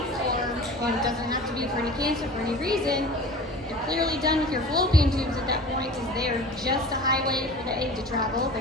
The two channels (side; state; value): both; normal; correlation 0.39